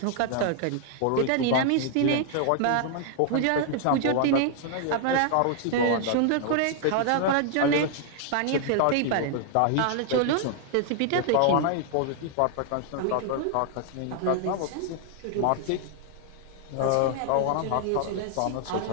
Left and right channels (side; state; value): both; different; correlation 0.00